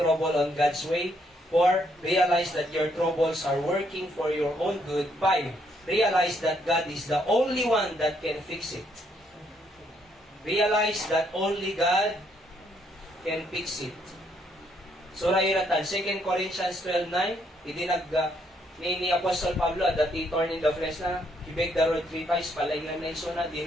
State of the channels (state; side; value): normal; both; correlation 0.72